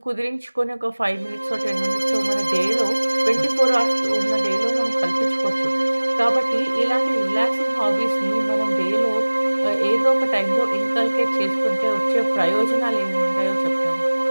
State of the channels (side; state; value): both; inverted; correlation -1.00